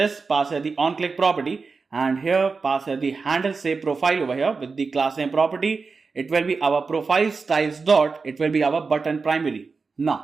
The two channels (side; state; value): left; quieter; 4.5 dB